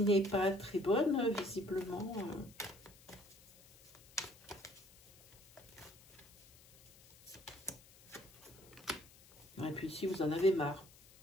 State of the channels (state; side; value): noise; left; hiss, 24 dB below the sound